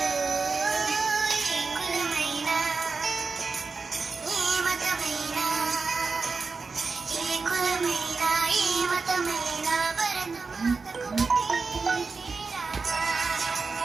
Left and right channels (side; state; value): left; quieter; 4.4 dB